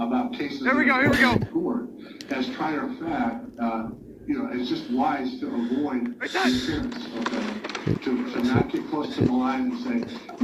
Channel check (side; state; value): both; identical; correlation 1.00